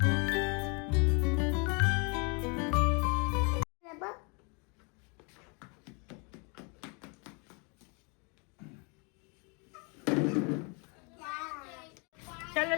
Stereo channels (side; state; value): right; quieter; 33.2 dB